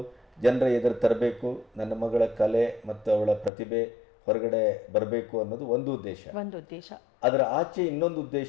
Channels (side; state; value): right; drops out; at 3.5 s